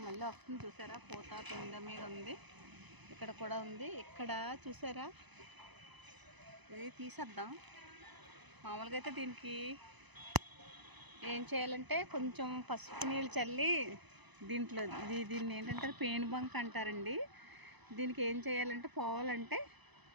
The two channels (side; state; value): left; late; 1.0 ms